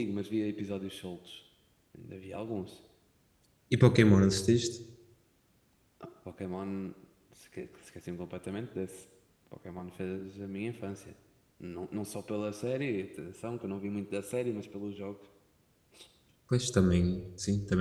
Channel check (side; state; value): both; identical; correlation 1.00